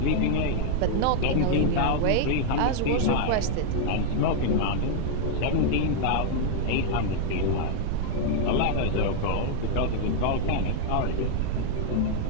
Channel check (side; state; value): both; different; correlation -0.01